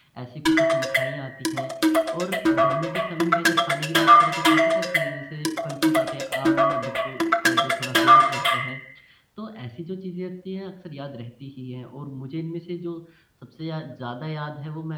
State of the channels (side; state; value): both; identical; correlation 1.00